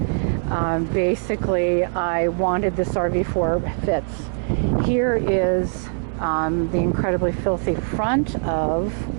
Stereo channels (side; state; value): left; silent; digital silence